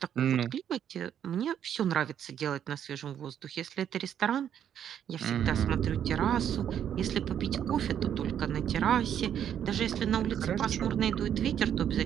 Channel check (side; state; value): left; quieter; 9.4 dB